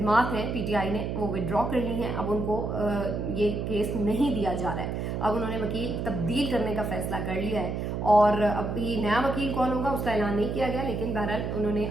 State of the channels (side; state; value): right; noise; hum, 3 dB below the sound